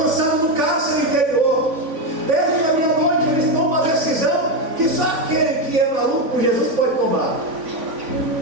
no cárcere interior. Perto da meia-noite eles tomam uma decisão que só aquele que é maluco por Jesus pode tomar.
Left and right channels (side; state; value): left; late; 3.5 ms